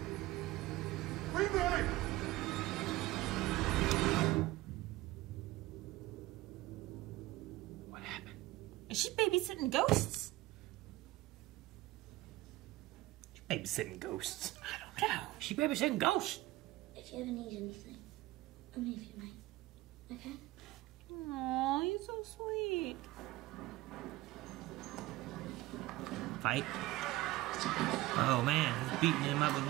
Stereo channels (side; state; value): left; quieter; 18.0 dB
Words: What happened? Is she babysitting ghosts? She's babysitting ghosts. I don't know. She babysitting ghosts. If you ever need anything, I'm here for you, mate. Okay? Aw, he's so sweet. Fight. Oh man, he's beating him up with